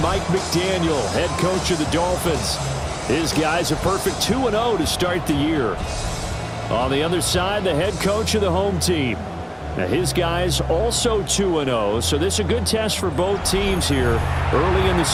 Mike McDaniel, head coach of the Dolphins. His guys are perfect 2-0 to start the year. On the other side, the head coach of the home team. Now his guys also 2-0, so this is a good test for both teams here early in the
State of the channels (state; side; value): identical; both; correlation 1.00